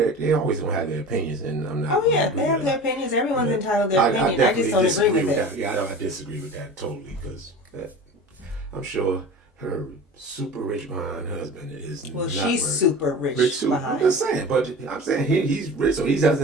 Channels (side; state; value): both; normal; correlation 0.35